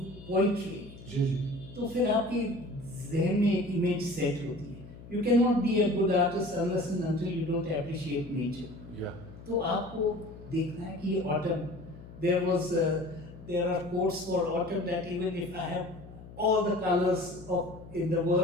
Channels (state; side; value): noise; left; hum, 17 dB below the sound